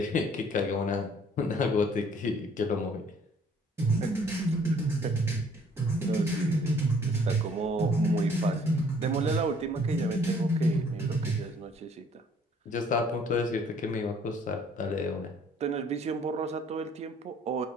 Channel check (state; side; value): normal; both; correlation 0.59